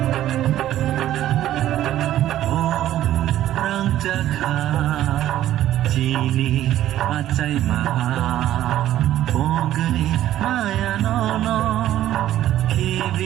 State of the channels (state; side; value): quieter; left; 12.9 dB